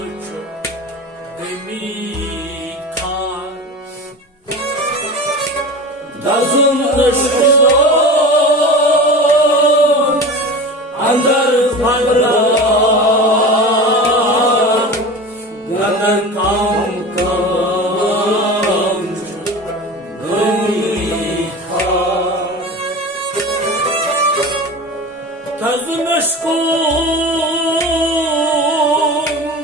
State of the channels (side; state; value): both; normal; correlation 0.31